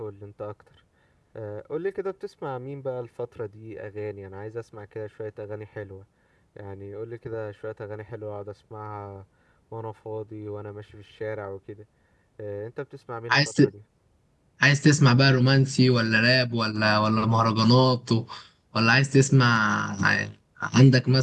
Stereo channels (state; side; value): identical; both; correlation 1.00